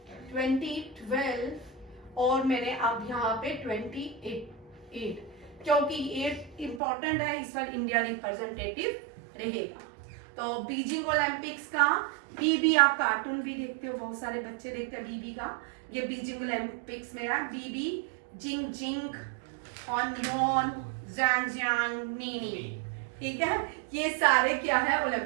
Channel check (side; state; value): left; drops out; at 6.8 s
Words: 2012 और मैंने अब यहाँ पे 28, क्योंकि 8 इंपॉर्टेंट है, इस बार इंडिया रिप्रेजेंटेटिव रहेगा। तो बीजिंग ओलंपिक्स का बीबी, आप कार्टून भी देखते हो, बहुत सारे बच्चे देखते हैं बीबी का, ये बीजिंग ओलंपिक्स में है, बीबी जिंग जिंग हॉन जैंग नीनी, ठीक है। ये सारे क्या है